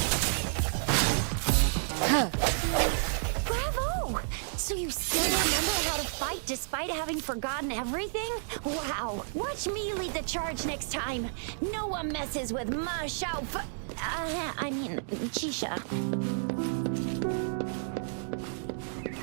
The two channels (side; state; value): left; silent; digital silence